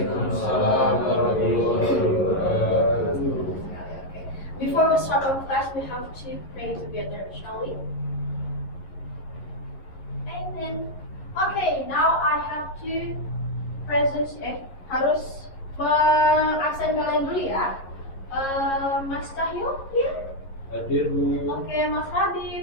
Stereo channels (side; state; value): right; late; 11 ms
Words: warahmatullahi wabarakatuh. Before we start our class, we have to pray together, shall we? Amen. Okay, now I have to harus mengaksen kalian dulu ya. Mas Cahyo, here? Hadir, Bu. Oke, Mas